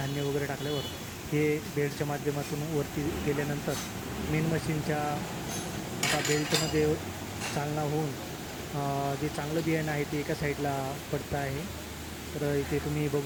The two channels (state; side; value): identical; both; correlation 1.00